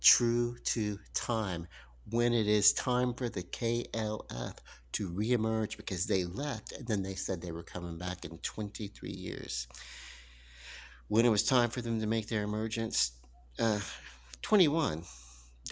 true to time. When it is time for the KLF to reemerge because they left and then they said they were coming back in 23 years. When it was time for them to make their emergence, uh, 21,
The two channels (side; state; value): both; identical; correlation 1.00